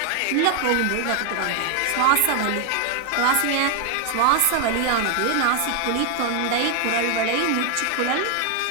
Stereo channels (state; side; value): different; both; correlation 0.00